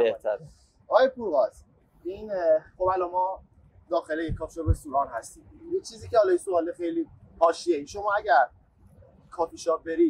آقای پورغاز، این خب الان ما داخل این کافی شاپ رستوران هستیم. یه چیزی که حالا سوال خیلی حاشیه‌ای، شما اگر کافی شاپ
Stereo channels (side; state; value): both; identical; correlation 1.00